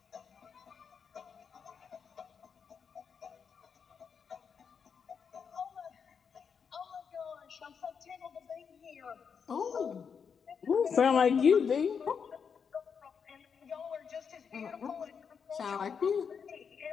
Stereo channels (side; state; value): right; quieter; 6.5 dB